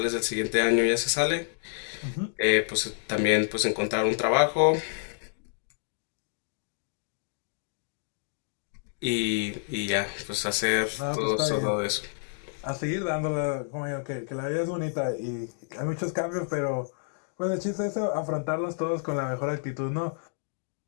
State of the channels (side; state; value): right; silent; digital silence